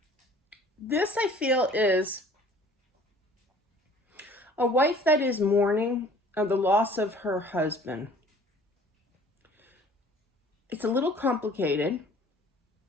This, I feel, is a wife that is mourning the loss of her husband. It's a little complicated,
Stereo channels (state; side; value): normal; both; correlation 0.51